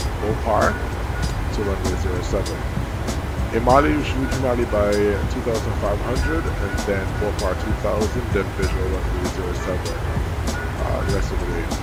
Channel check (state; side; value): identical; both; correlation 1.00